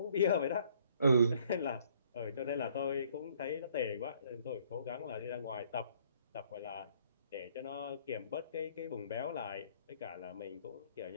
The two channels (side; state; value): both; inverted; correlation -0.62